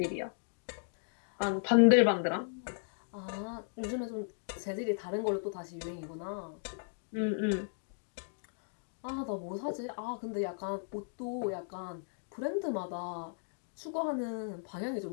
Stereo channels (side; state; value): right; silent; digital silence